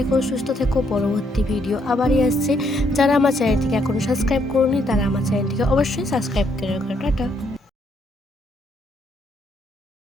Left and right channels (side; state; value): both; normal; correlation 0.73